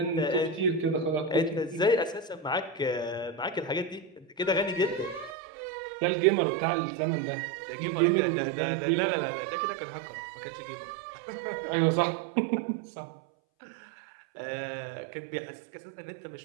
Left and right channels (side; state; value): left; drops out; at 5.4 s